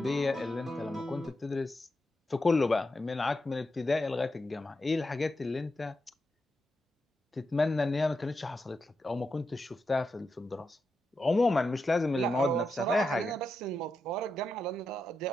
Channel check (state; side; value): normal; both; correlation 0.87